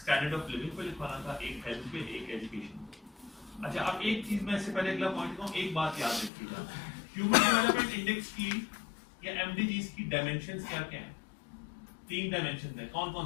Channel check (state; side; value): drops out; right; at 6.3 s